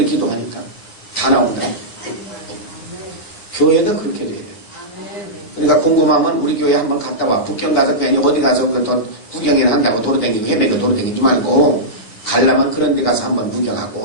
기도하니까 다 나온다. 교회도 그렇게 돼야 돼. 그러니까 궁금하면 우리 교회 한번 갔다 와. 북경 가서 괜히 어디 가서 구경이나 한다고 도로다니고 헤매고 도로다니지 말고 가려면 그런 데 가서 한번 구경하고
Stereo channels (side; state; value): right; late; 9.7 ms